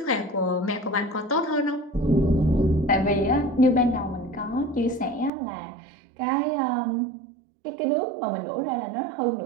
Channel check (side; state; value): left; drops out; at 5.3 s